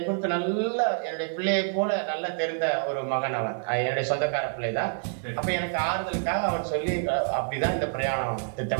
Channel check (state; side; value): silent; left; digital silence